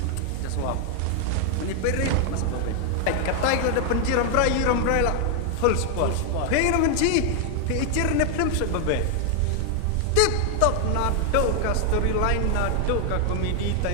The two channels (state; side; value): different; both; correlation 0.00